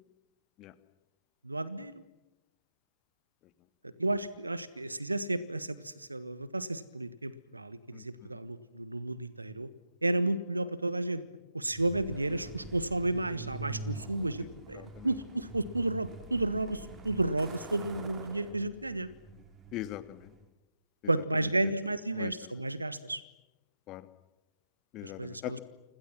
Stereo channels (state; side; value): inverted; both; correlation -0.88